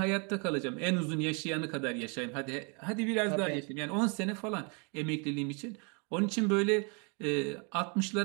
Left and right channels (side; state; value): left; quieter; 35.0 dB